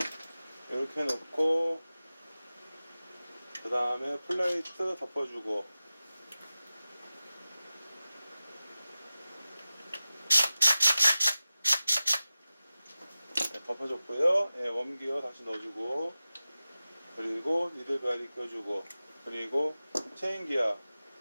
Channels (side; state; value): both; inverted; correlation -0.95